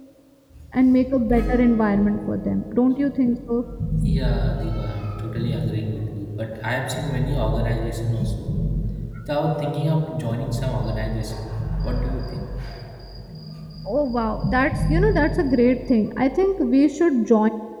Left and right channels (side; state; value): both; identical; correlation 1.00